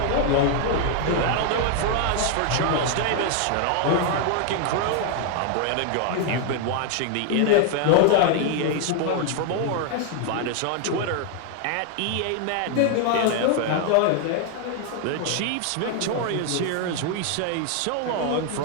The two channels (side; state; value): both; different; correlation 0.00